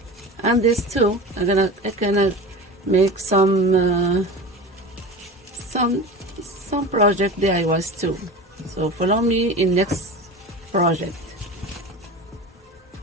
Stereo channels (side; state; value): both; normal; correlation 0.31